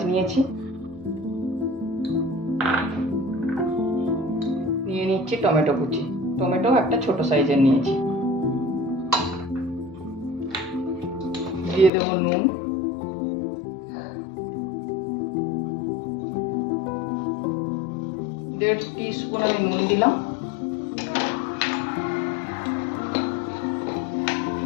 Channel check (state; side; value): drops out; right; at 11.9 s